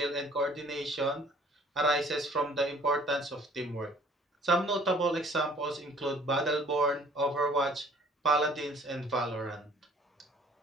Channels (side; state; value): both; normal; correlation 0.54